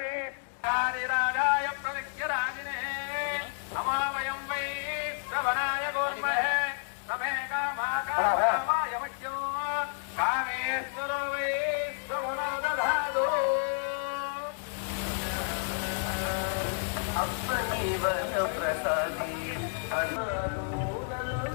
రాజాయ ప్రవిద్యరాజినే నమామయం వై శ్రవణాయ గోర్మహే సమే కామాయ మఖ్యం కామేశ్వరో వై శ్రవణో దధాదు ప్రసాది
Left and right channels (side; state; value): right; silent; digital silence